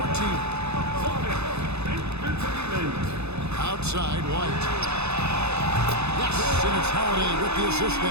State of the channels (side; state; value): left; late; 0.80 ms